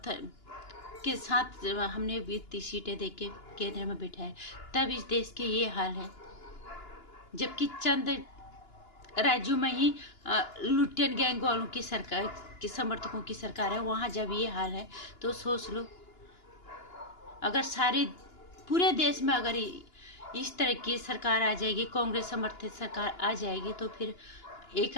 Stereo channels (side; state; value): right; late; 2.9 ms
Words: के साथ हमने 30 सीटें देके केंद्र में बिठाए, तब इस देश के ये हाल है। जबकि चंद राज्यों में ही लुटियन गैंग वालों की सरकार के समर्थकों की सरकार है, वहाँ जब ये हाल है तो सोच लो, अगर सारे पूरे देश में अगर इस तरह की सरकार आ जाएगी, कांग्रेस समर्थित सरकार आ जाएगी, तो फिर एक